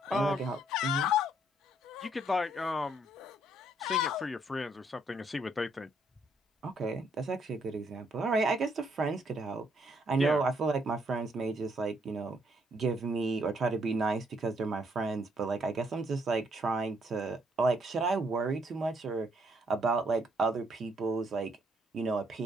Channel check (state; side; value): normal; both; correlation 0.70